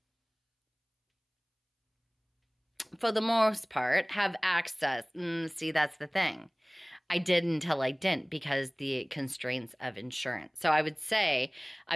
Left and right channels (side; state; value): both; identical; correlation 1.00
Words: for the most part, have access. See, that's the thing. I did until I didn't, because the constraints of insurance. So I would say